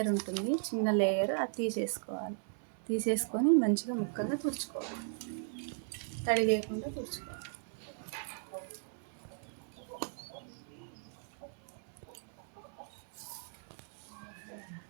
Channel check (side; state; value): left; silent; 53 dB below the other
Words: ఉంటుంది, చిన్న లేయర్, అది తీసేసుకోవాలి. తీసేసుకొని మంచిగా ముక్కలుగా తుడుచుకోవాలి, తడి లేకుండా తుడుచుకోవాలి.